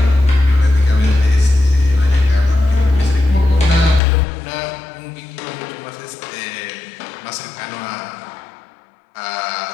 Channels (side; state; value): right; drops out; at 4.0 s